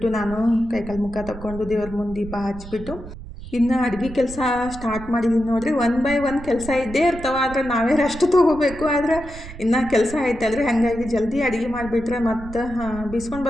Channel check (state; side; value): noise; right; rumble, 13 dB below the sound